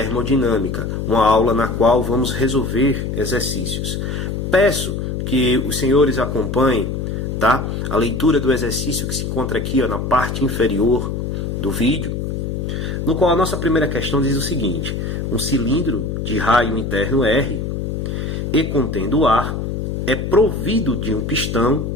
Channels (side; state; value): left; noise; hum, 3 dB below the sound